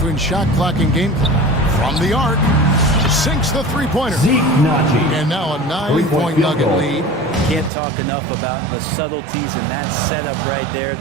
shot clock and game clock. From the arc, sinks the three-pointer. And now a 9-point Nugget lead. Can't talk enough about the subtleties in that setup right there.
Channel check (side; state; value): left; drops out; at 7.7 s